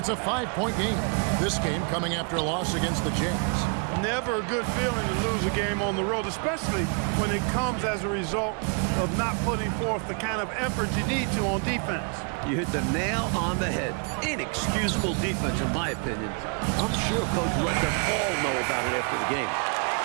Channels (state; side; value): quieter; left; 36.9 dB